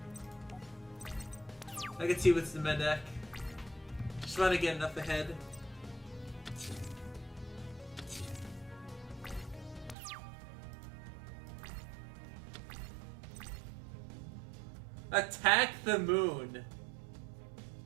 I can see what's in my deck. Just want to get enough ahead. Attack the moon.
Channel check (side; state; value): left; drops out; at 10.0 s